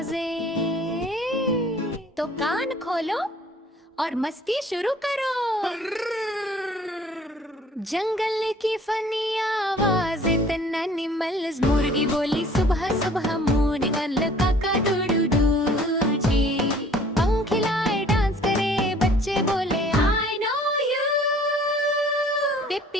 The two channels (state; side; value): normal; both; correlation 0.53